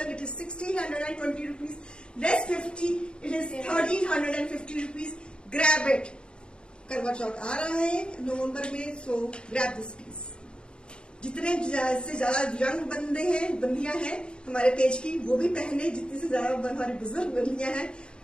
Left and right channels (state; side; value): late; right; 0.053 ms